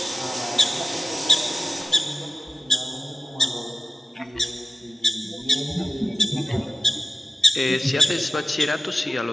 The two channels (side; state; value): both; normal; correlation 0.95